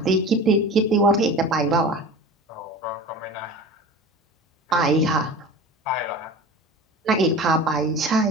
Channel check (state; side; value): normal; both; correlation 0.35